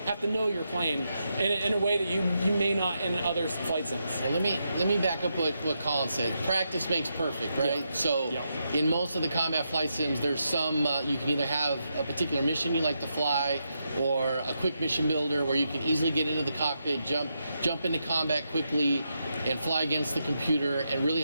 to know your plane in a way that you may not in other flight sims. Well, let me back up what Colin said. Practice makes perfect, right? Yeah. So Yeah. in most of the combat flight sims, there's some you can either have a particular mission you like to fly, or a quick mission builder where you can easily get into the cockpit, jump into combat quickly, and fly against the computer and really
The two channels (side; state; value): both; inverted; correlation -0.83